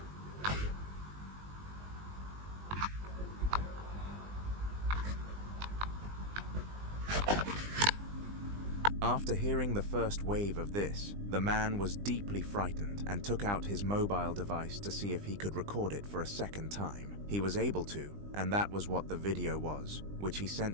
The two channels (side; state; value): left; late; 20 ms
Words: After hearing the first wave of this, the man was deeply frightened and took out his mobile device to see if he could record it for a second time. He was able to, and that was what the video was, which he